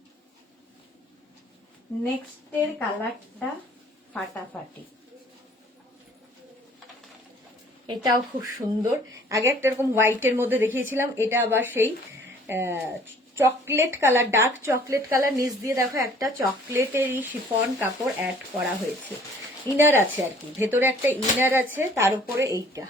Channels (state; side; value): normal; both; correlation 0.55